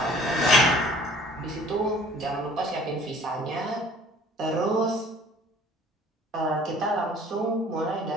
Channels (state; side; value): normal; both; correlation 0.51